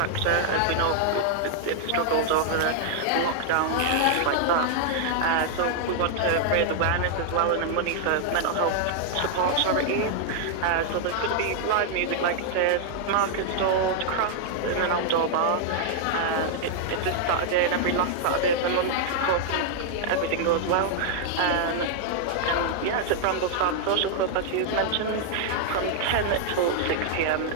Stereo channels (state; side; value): different; both; correlation -0.01